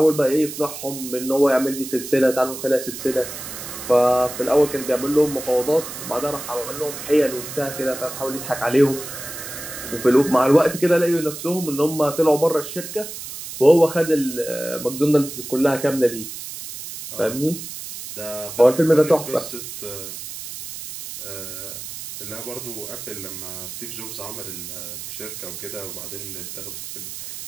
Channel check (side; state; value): right; noise; hiss, 10 dB below the sound